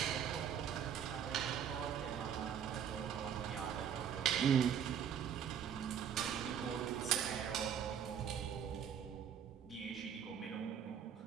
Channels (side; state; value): left; quieter; 8.5 dB